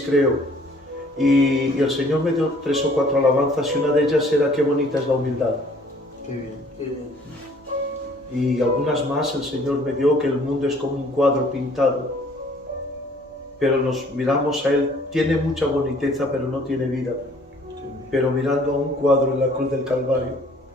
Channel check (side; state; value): both; normal; correlation 0.57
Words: creo. Y el Señor me dio 3 o 4 alabanzas y una de ellas era qué bonita es la humildad. Qué bien, qué bien. Y algunas más el Señor me dio que el mundo es como un cuadro pintado. Pero nos miramos a Él, tiene mucha boniteza pero no tiene vida. Pero mirando a un cuadro en la cruz del Calvario,